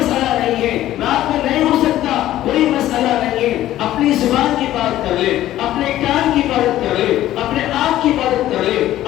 نہیں ہے، رات میں نہیں ہو سکتا، کوئی مسئلہ نہیں ہے، اپنی زبان کی بات کر لے، اپنے کان کی عبادت کر لے، اپنے آنکھ کی عبادت کر لے،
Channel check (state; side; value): quieter; right; 13.8 dB